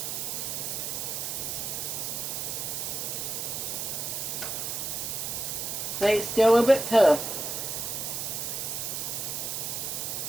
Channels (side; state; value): right; noise; hiss, 3 dB below the sound